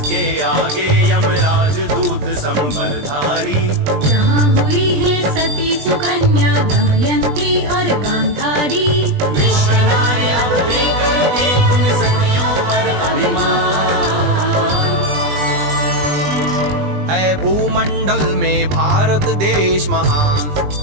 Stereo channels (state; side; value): late; left; 20 ms